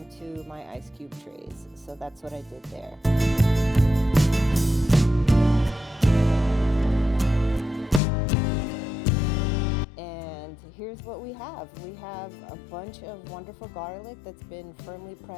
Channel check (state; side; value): drops out; right; at 8.0 s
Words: my ice cube trays. So that's what I did there. And here's what we have. We have a bunch of wonderful garlic that's been firmly